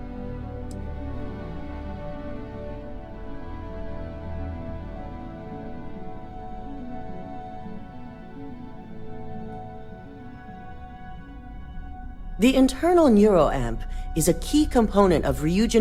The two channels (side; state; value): both; identical; correlation 1.00